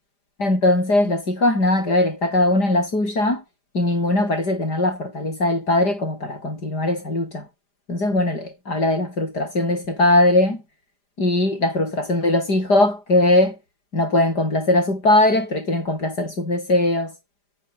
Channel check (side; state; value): right; late; 5.0 ms